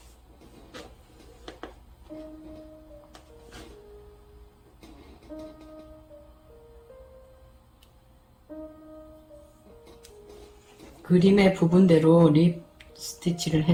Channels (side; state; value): both; identical; correlation 1.00